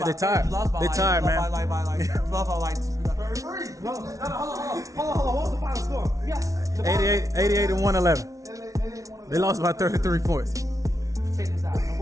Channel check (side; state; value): left; late; 0.17 ms